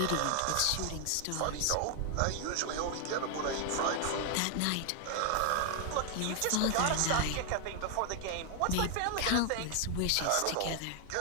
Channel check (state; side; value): different; both; correlation 0.00